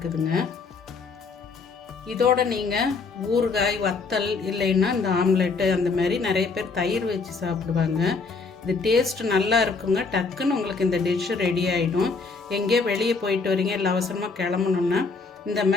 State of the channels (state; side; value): quieter; right; 4.4 dB